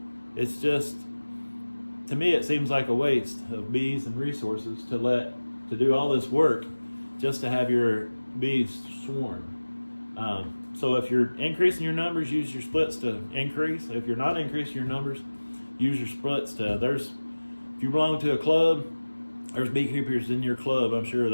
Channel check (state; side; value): inverted; both; correlation -1.00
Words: it's just, to me, it seems like a waste of bees and resources to do all this work just to have your bees swarm. So if you're increasing your numbers, use your splits to increase. If you're not increasing your numbers, use your splits to, if you belong to a club, there's beekeepers in your club, I'm sure,